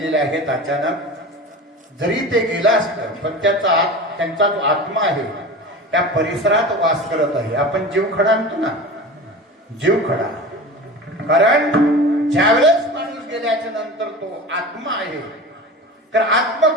आहेत अचानक. जरी ते गेला असतं पण त्यांचा जो आत्मा आहे त्या परिसरात वास करत आहे. आपण जीव खडा आणतो ना, जीव खडा. कारण ज्यावेळेस माणूस गेल्याच्या नंतर तो आत्मा आहे, तर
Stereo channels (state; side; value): normal; both; correlation 0.33